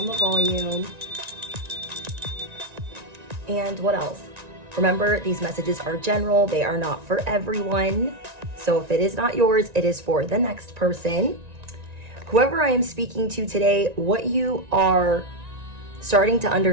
the volume. And what else? Remember, these messages are general. They are not for everyone. So if it is not yours, it is for the next person. Whoever I am speaking to today, what you are starting to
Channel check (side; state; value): left; late; 1.9 ms